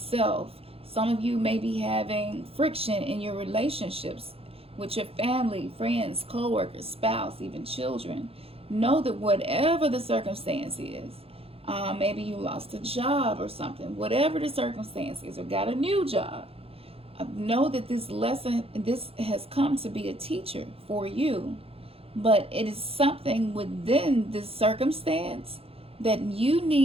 Some of you may be having friction in your relationships with your family, friends, co-workers, spouse, even children. Know that whatever the circumstance is, maybe you lost a job or something, whatever the circumstance is, or got a new job, know that this lesson, this has come to be a teacher for you, but it is something within this circumstance that you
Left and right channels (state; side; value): late; left; 0.28 ms